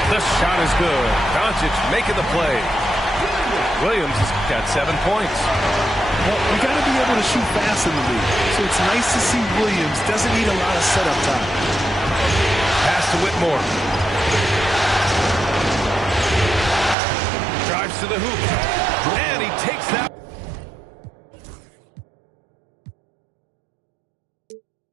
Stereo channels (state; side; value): drops out; left; at 16.9 s